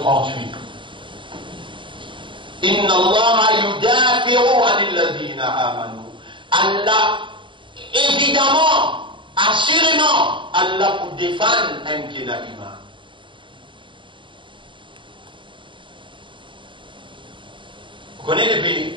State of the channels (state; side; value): late; left; 0.24 ms